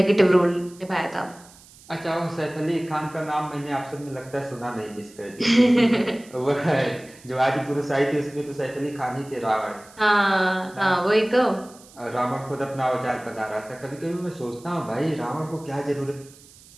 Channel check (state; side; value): noise; right; hiss, 23 dB below the sound